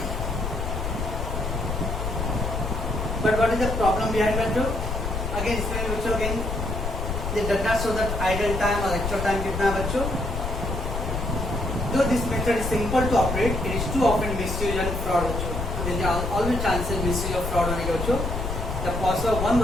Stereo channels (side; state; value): left; noise; rumble, 3 dB below the sound